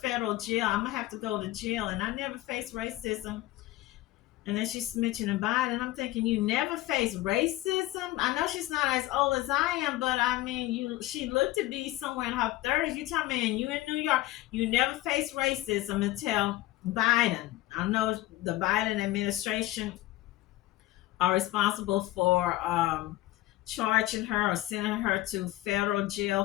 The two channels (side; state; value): right; quieter; 16.9 dB